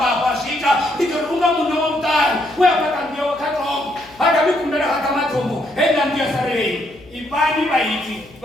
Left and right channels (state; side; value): noise; left; hum, 24 dB below the sound